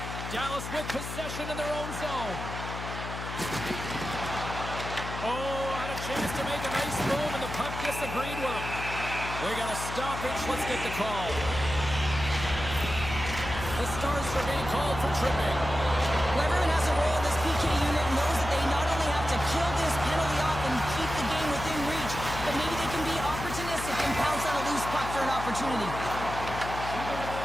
Dallas with possession in their own zone. Oh, had a chance to make a nice move, and the puck disagreed with him. We got a stoppage. Let's get the call. The Stars are being called for tripping. Well, everyone has a role in this PK unit and knows that they not only have to kill this penalty off and keep the game within reach, but maybe they can be opportunistic and pounce on a loose puck for an opportunity.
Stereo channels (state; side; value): noise; left; hum, 8 dB below the sound